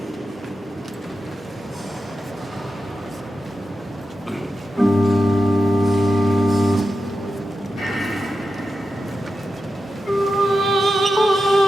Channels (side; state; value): both; normal; correlation 0.90